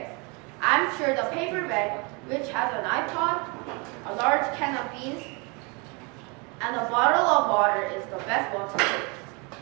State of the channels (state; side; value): quieter; left; 30.9 dB